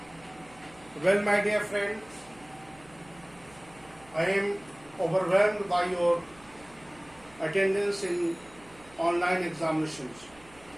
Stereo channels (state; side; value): noise; right; hum, 25 dB below the sound